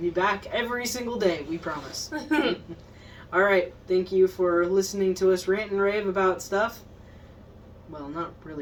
be back every single day, we promise. Alright, thank you for listening to us rant and rave about stuff. Well, not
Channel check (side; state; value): both; identical; correlation 1.00